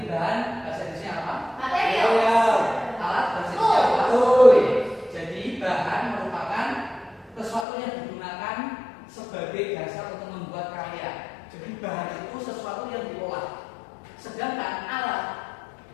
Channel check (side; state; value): right; drops out; at 7.7 s